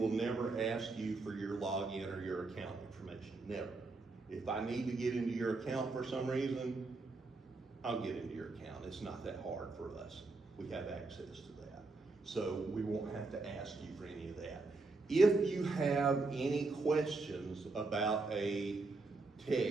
never ask you for your login or your account information, never. If I need to get into your account for some reason, I'll get into your account. It's not that hard for us. We have access to that. So we won't have to ask you for any of that. If you have any questions about a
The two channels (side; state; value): left; quieter; 3.6 dB